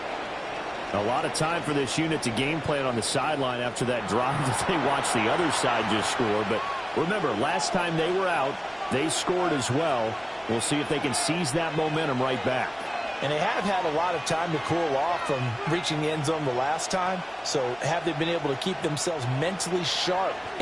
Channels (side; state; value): both; identical; correlation 1.00